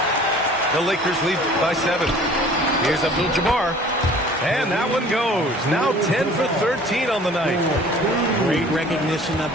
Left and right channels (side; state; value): both; normal; correlation 0.49